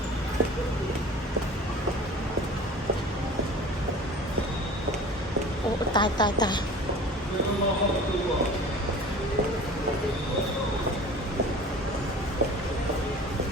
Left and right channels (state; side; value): normal; both; correlation 0.41